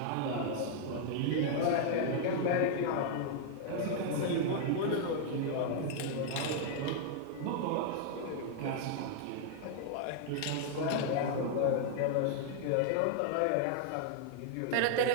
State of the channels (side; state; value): both; different; correlation -0.01